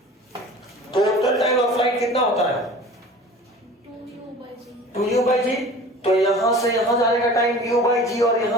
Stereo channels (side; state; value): both; normal; correlation 0.42